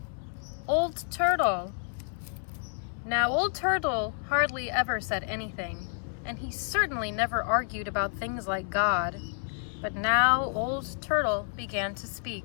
Old Turtle. Now, Old Turtle hardly ever said anything, and he certainly never argued about things like God. But now Old Turtle began to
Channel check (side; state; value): right; silent; 58 dB below the other